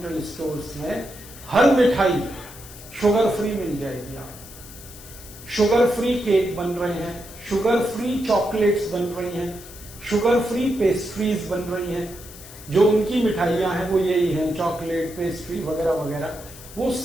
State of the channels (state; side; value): noise; left; hiss, 17 dB below the sound